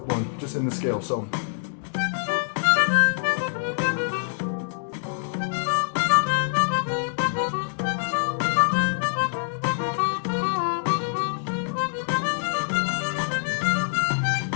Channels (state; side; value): silent; right; 59 dB below the other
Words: 1, just in the scale. So.